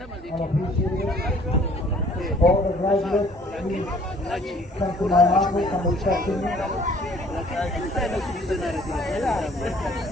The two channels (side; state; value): both; normal; correlation 0.56